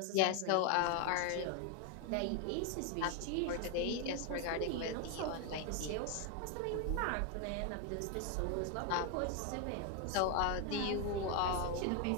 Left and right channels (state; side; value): different; both; correlation 0.01